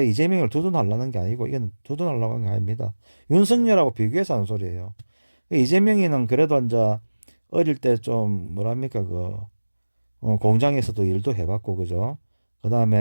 이재명을 두둔하려는 게 아니고 이건 두둔하려고 하는 게 아닙니다. 윤석열하고 비교해서 하는 소리예요. 이재명이는 그래도 이제 어릴 때 좀 뭐랍니까 그 공장에서도 일도 해봤고 그죠. 그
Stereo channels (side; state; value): both; inverted; correlation -1.00